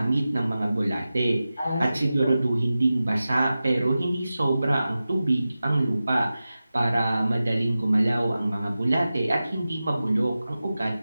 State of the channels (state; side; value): inverted; both; correlation -0.95